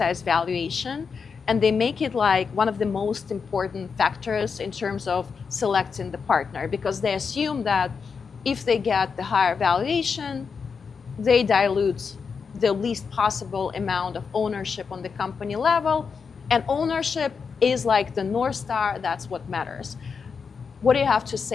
valuation and they make it like one of the most important factors in terms of selecting the partner, because they assume that if they get the higher valuation, they dilute the least possible amount of ownership on the company level. And ownership is like the North Star, that's what matters. What do you have to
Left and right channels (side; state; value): right; quieter; 5.7 dB